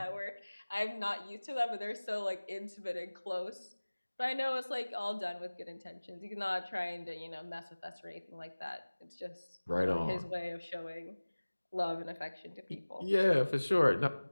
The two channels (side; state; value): both; inverted; correlation -1.00